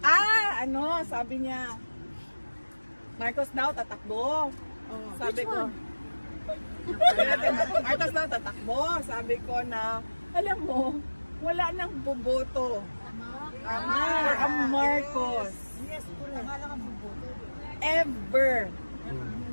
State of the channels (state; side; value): inverted; both; correlation -1.00